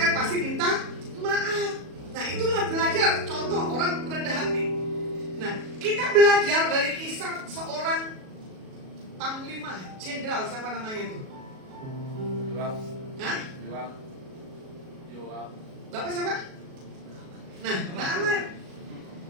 pasti minta maaf. Nah itulah belajar, contoh orang rendah hati. Nah kita belajar dari kisah seorang panglima, jenderal, siapa namanya itu? Yoab. Hah? Yoab. Bapak siapa? Nah, Naaman.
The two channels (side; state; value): left; late; 37 ms